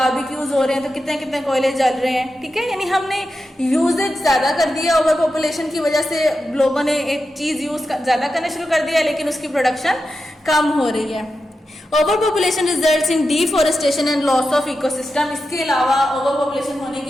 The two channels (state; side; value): normal; both; correlation 0.90